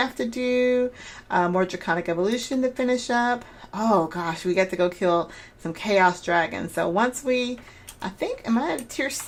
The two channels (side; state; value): both; identical; correlation 1.00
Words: to do. More draconic evolution to finish up. Oh gosh, we got to go kill some chaos dragons. So once I think, am I at tier